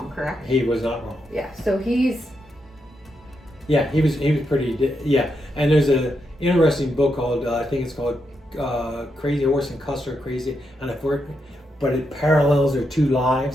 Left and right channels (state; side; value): normal; both; correlation 0.83